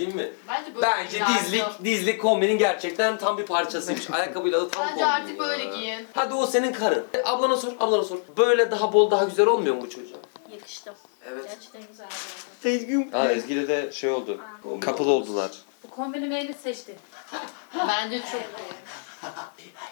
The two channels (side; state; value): right; silent; digital silence